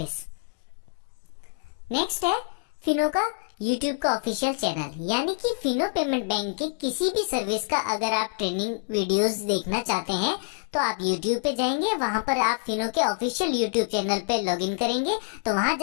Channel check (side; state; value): right; silent; digital silence